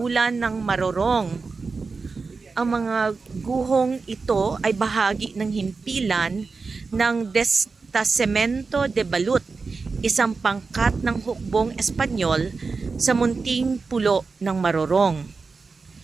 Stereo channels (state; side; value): quieter; left; 4.4 dB